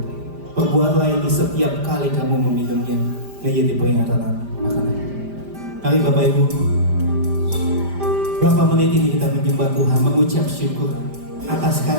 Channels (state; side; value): late; left; 5.0 ms